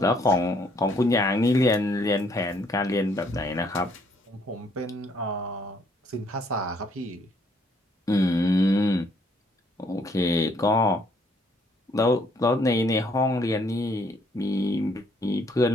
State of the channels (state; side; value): normal; both; correlation 0.66